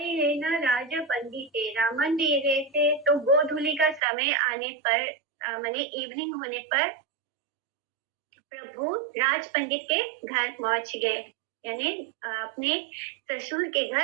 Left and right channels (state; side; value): drops out; left; at 4.0 s